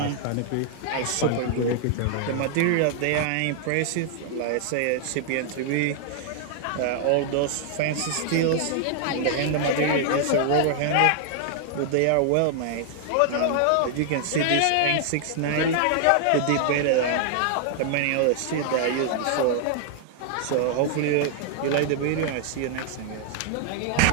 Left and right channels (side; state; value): both; different; correlation 0.00